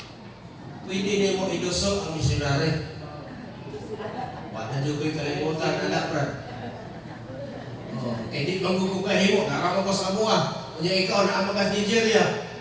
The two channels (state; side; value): identical; both; correlation 1.00